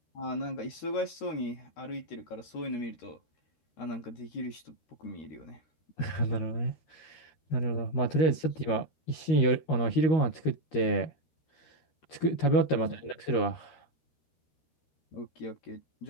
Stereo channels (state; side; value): late; right; 13 ms